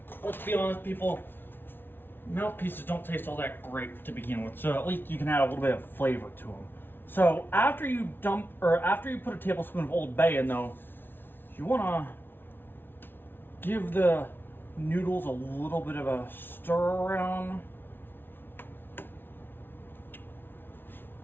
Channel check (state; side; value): late; right; 0.10 ms